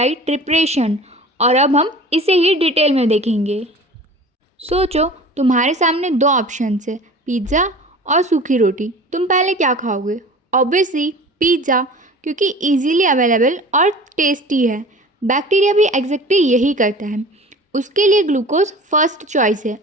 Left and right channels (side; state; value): both; normal; correlation 0.41